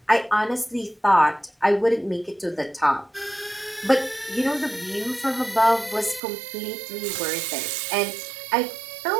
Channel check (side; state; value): left; drops out; at 6.2 s